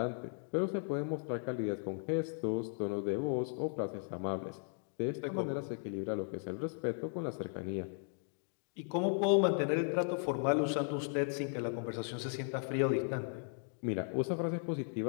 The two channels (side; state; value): right; silent; 53 dB below the other